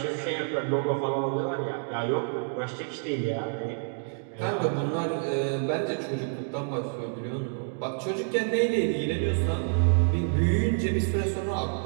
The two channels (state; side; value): silent; left; 59 dB below the other